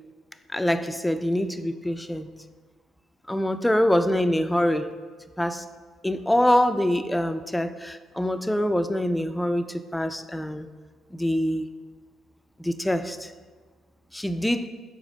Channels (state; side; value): normal; both; correlation 0.95